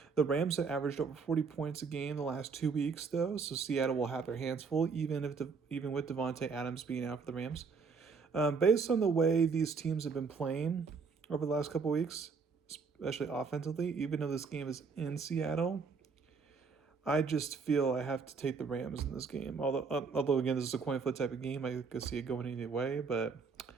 The Rams have averaged over 40 points a game the last 2 weeks, though, so Seattle will have their hands full, even with Devontae Adams being out for the Rams. Based on the way these teams have been playing over the last couple weeks, especially offensively, even though this game is in Seattle, I just feel I have to take the Rams in this game. Although again, this is a coin flip type of game, I could see it going either way, but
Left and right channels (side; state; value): left; quieter; 5.2 dB